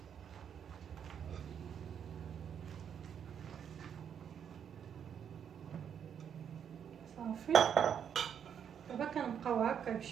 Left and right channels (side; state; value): left; quieter; 8.2 dB